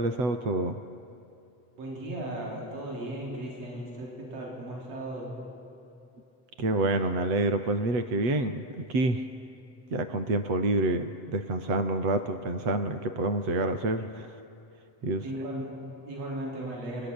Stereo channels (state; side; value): late; left; 8.0 ms